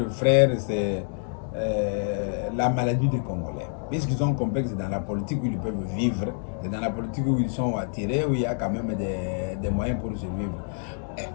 frère, c'est la maladie des Congolais. Puisqu'ils sont complexes dans la politique où ils peuvent vivre, et dans la politique où ils sont attirés, où il y a quand même des moyens pour survivre.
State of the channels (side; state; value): right; silent; 60 dB below the other